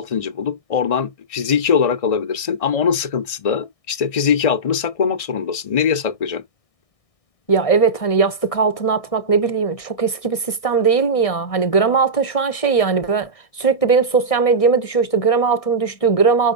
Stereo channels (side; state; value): right; late; 1.6 ms